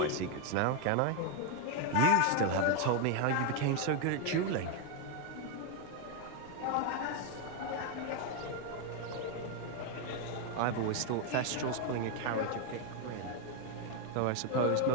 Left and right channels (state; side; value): different; both; correlation 0.01